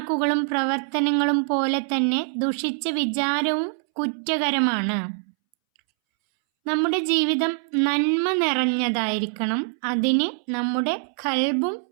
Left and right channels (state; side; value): silent; left; 63 dB below the other